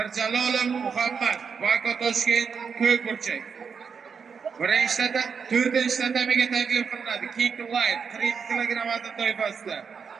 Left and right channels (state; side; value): quieter; left; 6.1 dB